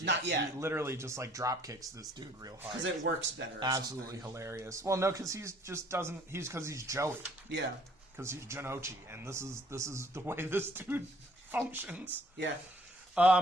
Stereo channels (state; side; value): normal; both; correlation 0.59